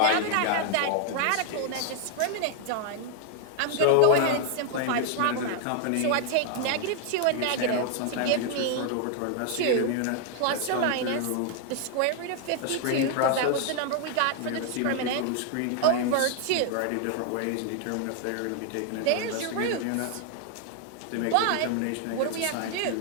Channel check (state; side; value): different; both; correlation 0.00